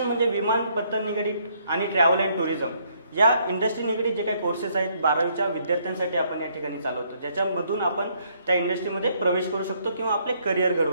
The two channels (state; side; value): inverted; both; correlation -0.69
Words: म्हणजे विमानपत्तन निगडीत आणि ट्रॅव्हल अँड टुरिझम या इंडस्ट्री निगडीत जे काही कोर्सेस आहेत 12वीच्या विद्यार्थ्यांसाठी आपण या ठिकाणी चालवतो, ज्याच्यामधून आपण त्या इंडस्ट्रीमध्ये प्रवेश करू शकतो किंवा आपले करिअर